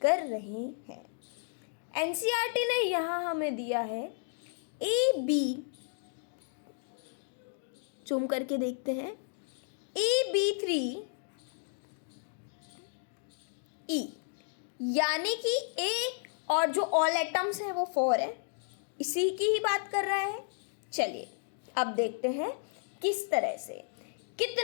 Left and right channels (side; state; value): right; silent; digital silence